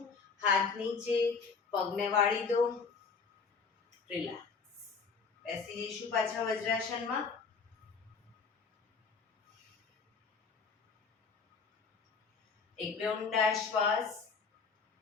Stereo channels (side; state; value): right; quieter; 5.2 dB